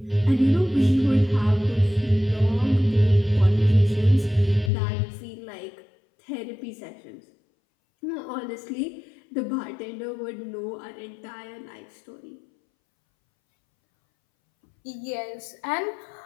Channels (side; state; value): right; drops out; at 4.7 s